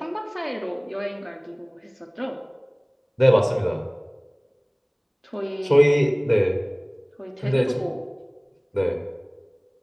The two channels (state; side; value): identical; both; correlation 1.00